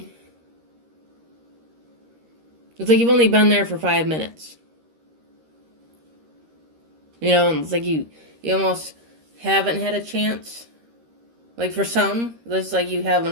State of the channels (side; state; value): left; late; 13 ms